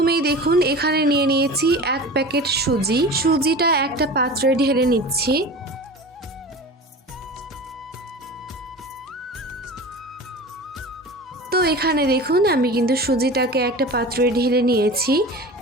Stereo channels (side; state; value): both; normal; correlation 0.34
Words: দেখুন, এখানে নিয়ে নিয়েছি 1 প্যাকেট সুজি। সুজিটা একটা পাত্রে ঢেলে নিচ্ছি। তো এখানে দেখুন, আমি কিন্তু সুজিটাকে একটা পাত্রে ঢেলে নিয়েছি।